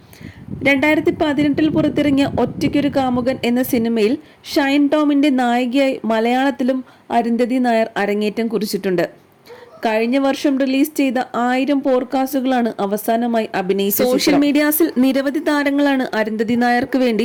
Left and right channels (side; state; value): both; identical; correlation 1.00